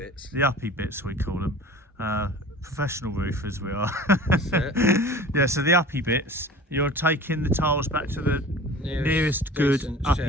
The uppy bits we call them. Professional roofers we are. That's it. Yeah, so the uppy bits, you're taking the tiles back to the nearest good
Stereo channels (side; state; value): both; normal; correlation 0.41